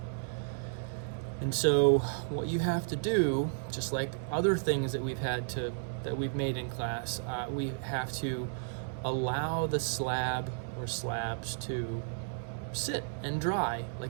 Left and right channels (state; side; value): silent; left; digital silence